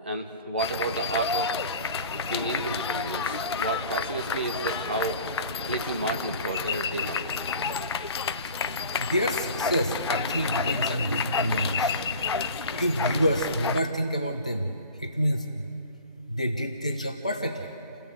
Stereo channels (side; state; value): both; inverted; correlation -0.42